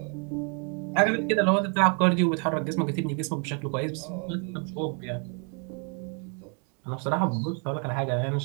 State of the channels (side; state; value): left; quieter; 37.9 dB